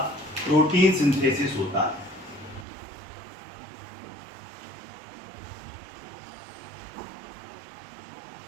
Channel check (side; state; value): left; drops out; at 2.7 s